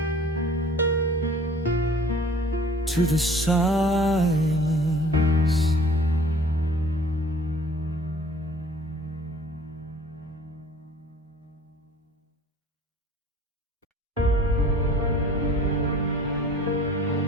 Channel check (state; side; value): normal; both; correlation 0.50